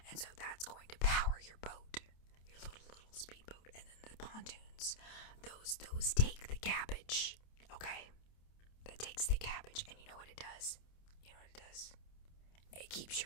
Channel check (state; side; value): late; right; 27 ms